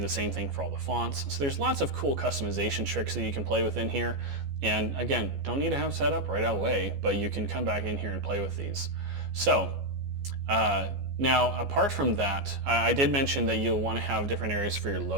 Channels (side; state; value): left; late; 14 ms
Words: same thing for all the fonts. So there's lots of cool customization tricks that you can play with in here. And again, don't need to have set up right away, but you can come back in here and play with these. So now, apart from that, I did mention that you'll want to have different areas for your